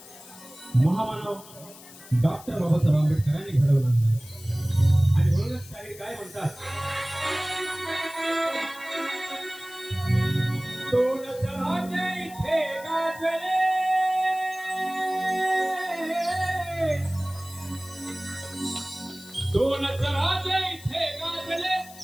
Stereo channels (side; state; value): left; noise; hiss, 19 dB below the sound